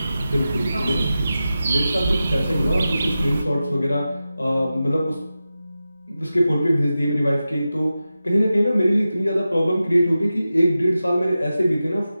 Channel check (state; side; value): inverted; both; correlation -0.93